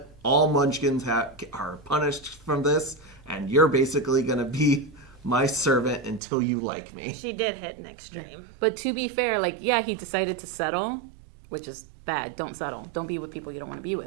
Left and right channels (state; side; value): drops out; left; at 6.2 s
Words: All Munchkins are punished from this. And you're basically going to be my servant until you like me. She did hit an extreme. Yeah. But to be fair, he decided to settle, which is bad. Don't settle. Don't be with people you don't want to be